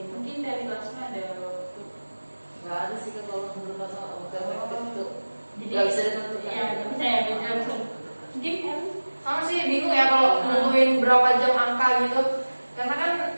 gitu. Mungkin dari Lasma ada waktu. Nggak ada sih kan kalau menurut masa bukan efektif itu Jadi nggak bisa ditentukan. Iya, nggak bisa ya beda langsung. Mungkin kan Sama sih bingung ya kalau nentuin berapa jam angka gitu. Karena kan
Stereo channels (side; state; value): both; inverted; correlation -1.00